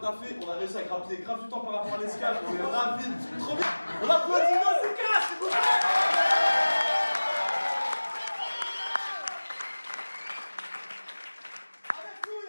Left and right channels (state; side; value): inverted; both; correlation -1.00